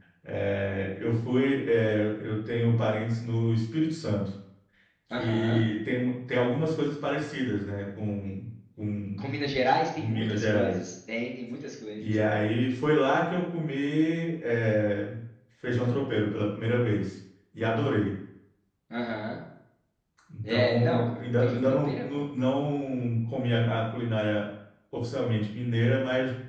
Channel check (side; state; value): both; identical; correlation 1.00